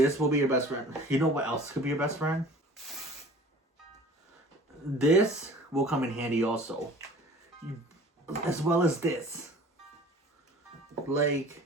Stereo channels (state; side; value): normal; both; correlation 0.46